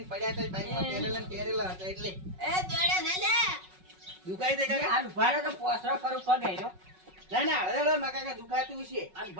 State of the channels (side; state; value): left; late; 5.4 ms